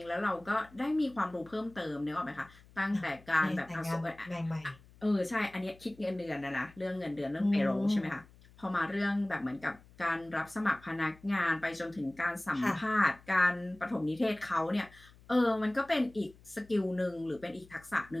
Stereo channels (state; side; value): noise; left; hum, 24 dB below the sound